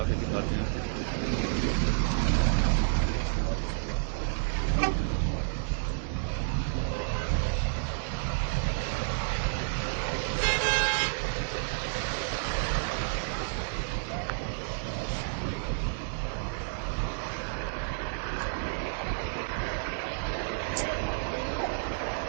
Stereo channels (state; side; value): silent; left; digital silence